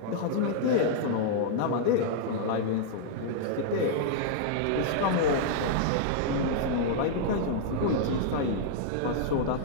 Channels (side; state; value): both; different; correlation -0.01